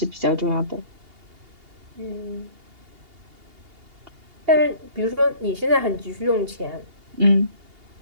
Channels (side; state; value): left; late; 2.8 ms